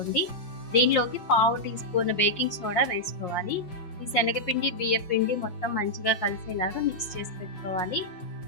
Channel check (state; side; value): late; right; 5.7 ms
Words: దీనిలోకి పావు టీ స్పూన్ బేకింగ్ సోడా వేసుకోవాలి. ఈ శనగపిండి బియ్యపిండి మొత్తం మంచిగా కలిసేలాగా మిక్స్ చేసి పెట్టుకోవాలి.